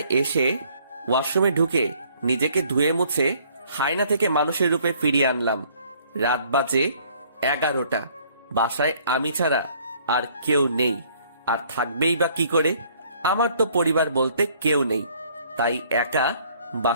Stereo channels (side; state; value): both; inverted; correlation -0.60